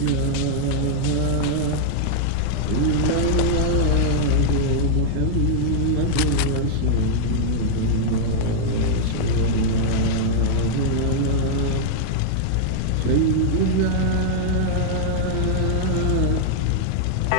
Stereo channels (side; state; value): both; different; correlation -0.01